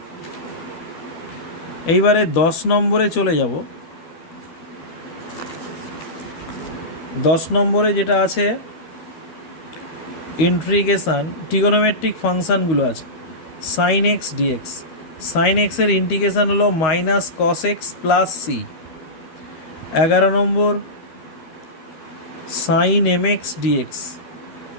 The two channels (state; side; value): late; right; 13 ms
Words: এইবারে 10 নম্বরে চলে যাব। 10 নম্বরে যেটা আছে ইন্টিগ্রেশন ট্রিগোনোমেট্রিক ফাংশানগুলো আছে। সাইন এক্স ডিএক্স, সাইন এক্সের ইন্টিগ্রেশন হলো minus cos x plus c. 11 নম্বর সাইন এম এক্স ডিএক্স,